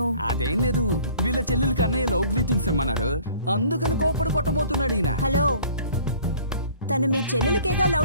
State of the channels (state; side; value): inverted; both; correlation -0.51